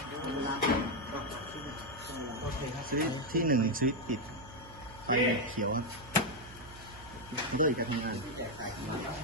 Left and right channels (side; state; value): right; noise; hum, 18 dB below the sound